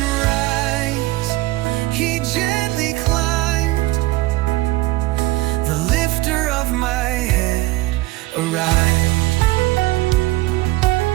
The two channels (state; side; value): quieter; left; 19.2 dB